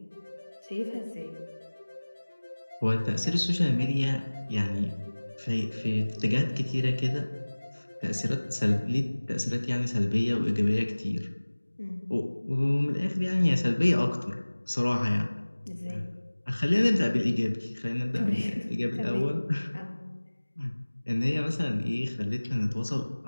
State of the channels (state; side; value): inverted; both; correlation -1.00